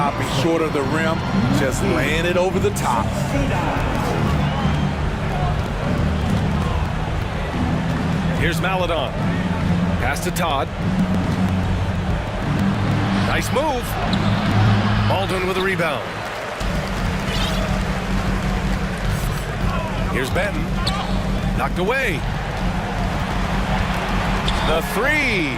short of the rim, just laying it over the top. Here's Maladon. Pass to Todd. Nice move. Baldwin with a rebound. Here's Benton. Knocked away. The 3.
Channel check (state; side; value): identical; both; correlation 1.00